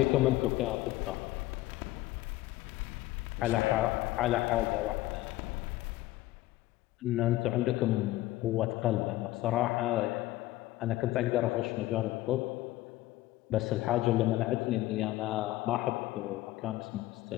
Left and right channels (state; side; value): quieter; right; 16.9 dB